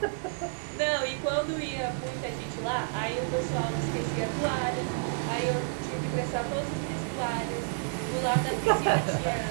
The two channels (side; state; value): left; silent; digital silence